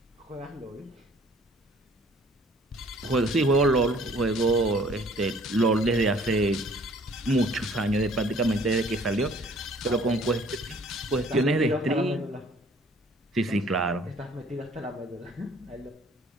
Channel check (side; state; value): both; normal; correlation 0.56